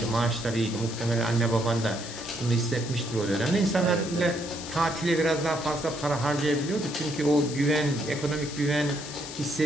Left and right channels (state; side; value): noise; left; hiss, 11 dB below the sound